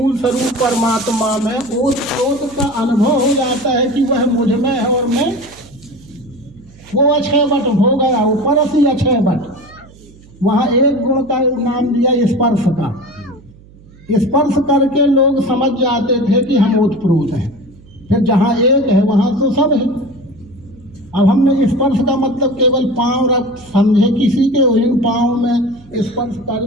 स्वरूप परमात्मा में ओतप्रोत का अनुभव हो जाता है कि वह मुझ में है और मैं वो अक्षय बट हो गया, ऊपर असी अक्षय बट। वहाँ एक गुण का नाम दिया स्पर्श का। स्पर्श करके लोग समझ जाते थे कि हम ओतप्रोत हैं, फिर जहाँ एक है वहाँ तो सब है। अब हमने स्पर्श का मतलब केवल पांव रख समझे, किसी के इन पांव में स्पर्श कर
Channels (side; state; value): right; noise; hum, 24 dB below the sound